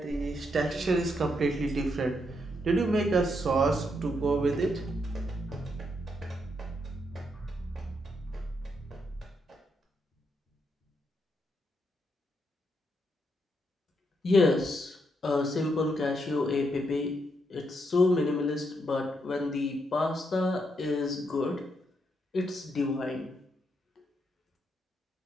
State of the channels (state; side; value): normal; both; correlation 0.79